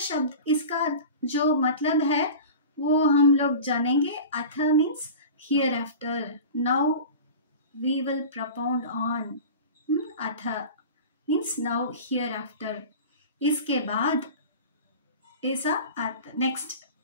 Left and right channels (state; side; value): inverted; both; correlation -0.35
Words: शब्द इसका जो मतलब है वो हम लोग जानेंगे। अथ means hereafter, now we will propound on. अथ means now hereafter, इसके बाद ऐसा अर्थ, नेक्स्ट